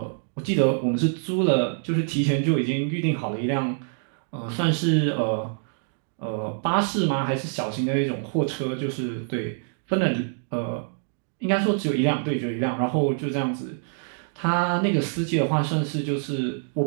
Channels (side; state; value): left; silent; digital silence